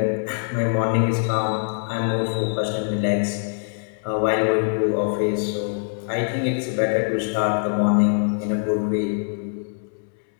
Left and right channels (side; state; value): right; silent; 63 dB below the other